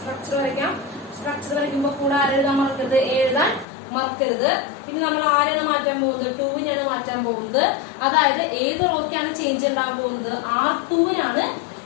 വരയ്ക്കാം. സ്ട്രക്ചർ വരയ്ക്കുമ്പോൾ കൂടെ ആരെഴുതാൻ മറക്കരുത്? എഴുതാൻ മറക്കരുത്. ഇനി നമ്മൾ ആരെയാണ് മാറ്റാൻ പോകുന്നത്? 2വിനെയാണ് മാറ്റാൻ പോകുന്നത്. അതായത് ഏത് റോക്കാണ് ചേഞ്ച് ഉണ്ടാകാൻ പോകുന്നത്? R2വിനാണ്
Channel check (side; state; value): right; drops out; at 3.7 s